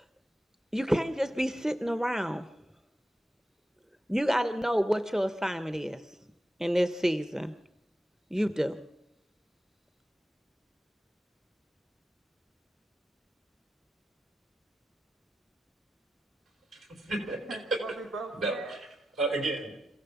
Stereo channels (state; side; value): normal; both; correlation 0.91